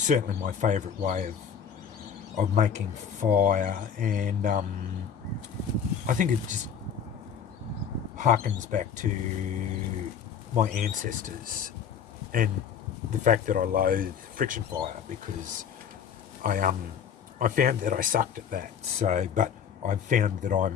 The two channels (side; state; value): right; quieter; 7.6 dB